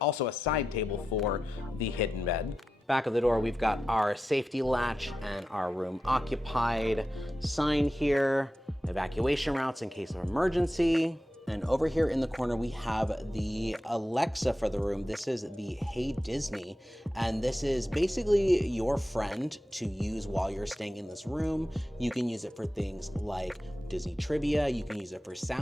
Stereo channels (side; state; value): both; normal; correlation 0.91